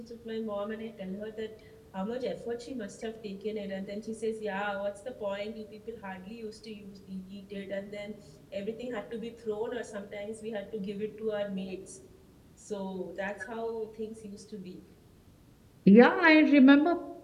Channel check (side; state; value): both; identical; correlation 1.00